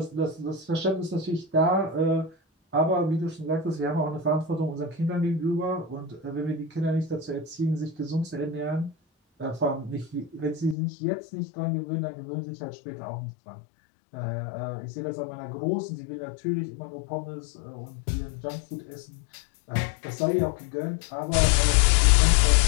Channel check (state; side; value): drops out; right; at 10.8 s